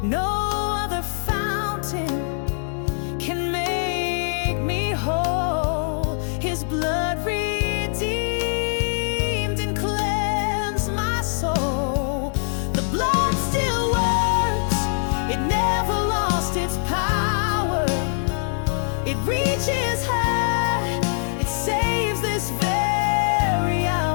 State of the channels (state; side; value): silent; right; digital silence